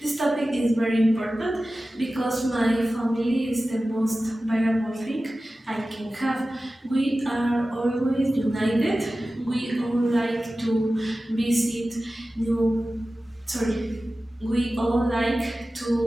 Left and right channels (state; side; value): normal; both; correlation 0.95